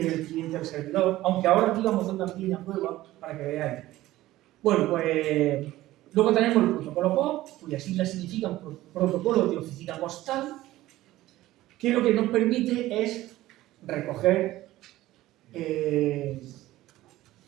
el cliente al servidor, aunque ahora aquí vamos a hacer una pequeña prueba para que veáis. Bueno, pues luego tenemos el protocolo POP, cuyas siglas significan protocolo de oficina postal, que lo que nos permite es recoger,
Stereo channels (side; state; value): left; quieter; 16.1 dB